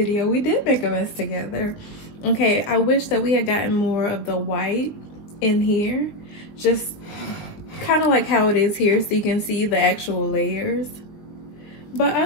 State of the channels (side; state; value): right; late; 19 ms